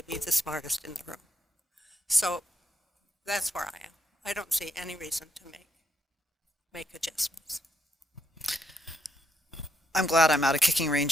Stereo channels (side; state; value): both; normal; correlation 0.78